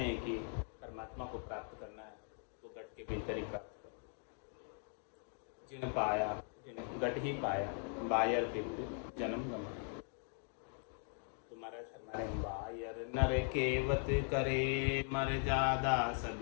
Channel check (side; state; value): right; silent; 51 dB below the other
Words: हैं कि परमात्मा को प्राप्त करना है तो घट के भीतर ही प्राप्त करो। जिन पाया जिन घट ही पाया, बायर विपरीत जन्म गमाया। तो महाराज फरमा रहे हैं बायर नर केवत करे मर्यादा सब